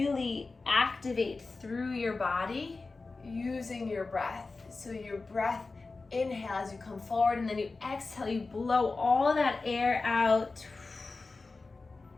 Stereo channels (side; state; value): right; quieter; 3.8 dB